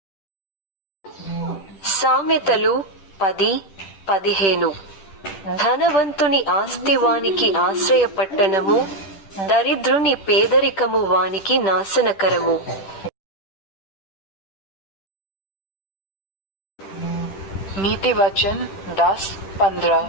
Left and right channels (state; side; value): late; right; 10 ms